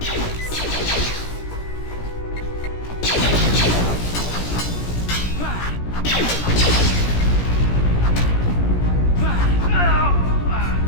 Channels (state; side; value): late; right; 17 ms